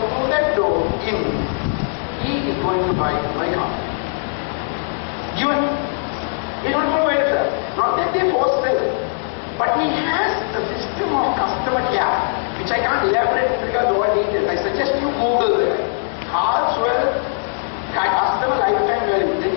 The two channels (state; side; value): silent; right; digital silence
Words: that door in, he is going to buy my car. Given, he's not going to buy it, sir. Not that they force sell, but he has a system of customer care, which I can't elaborate because of all details. I suggest you Google it. Carlswell customer lifetime value. Then